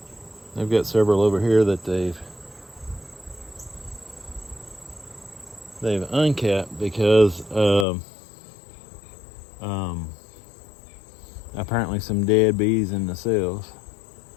They've got several over here that they've uncapped because of apparently some dead bees in the cells.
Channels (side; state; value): right; drops out; at 7.9 s